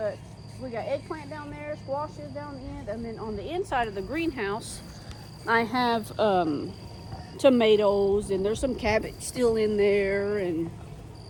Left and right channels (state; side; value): identical; both; correlation 1.00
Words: we got eggplant down there, squashes down the end, and then on the inside of the greenhouse, I have tomatoes, and there's some cabbage still in there, and